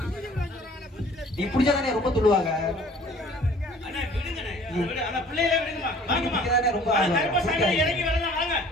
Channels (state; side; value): normal; both; correlation 0.52